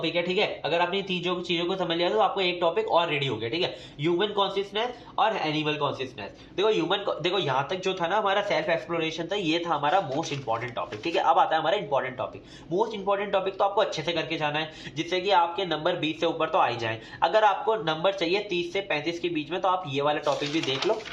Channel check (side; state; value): both; identical; correlation 1.00